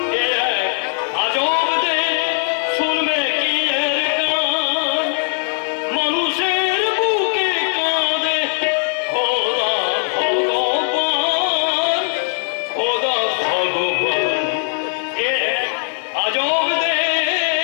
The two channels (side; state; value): right; silent; 64 dB below the other